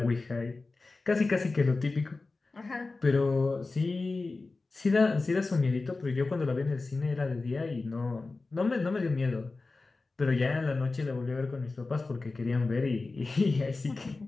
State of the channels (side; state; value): right; quieter; 3.6 dB